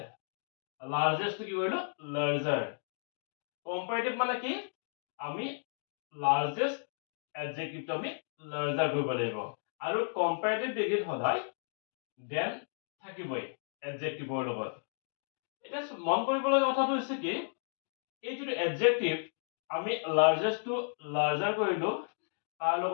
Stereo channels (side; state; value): right; silent; digital silence